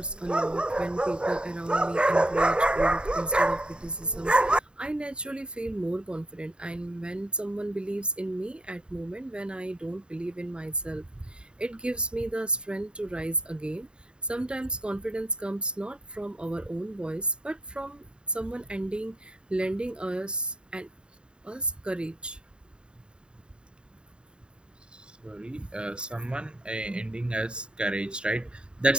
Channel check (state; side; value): late; left; 0.051 ms